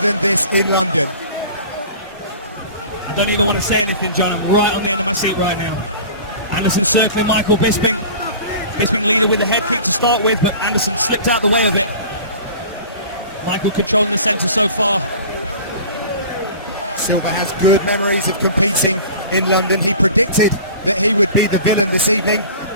this in London. I don't even want to say anything, John. I'm right on the end of my seat right now. Anderson circling Michael Bisping. Bisping leading with the head kick to start with, but Anderson slipped out the way of it. Michael controlling the centre so far. Silva has good memories of competing in London. He predicted that he would be the villain this evening,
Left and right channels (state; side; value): inverted; both; correlation -0.41